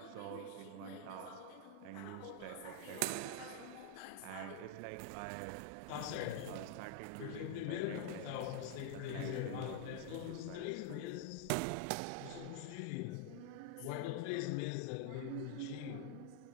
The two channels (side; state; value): both; different; correlation 0.00